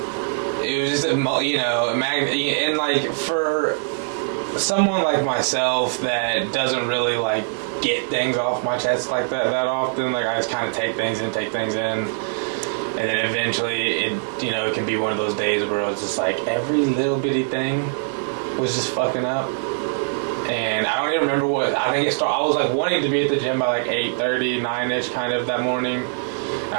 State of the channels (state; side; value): silent; left; digital silence